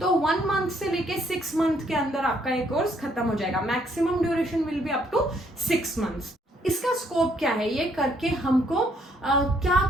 तो 1 मंथ से लेके 6 मंथ के अंदर आपका ये कोर्स खत्म हो जाएगा। Maximum duration will be up to 6 months. इसका स्कोप क्या है, ये करके हमको क्या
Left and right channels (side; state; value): both; normal; correlation 0.68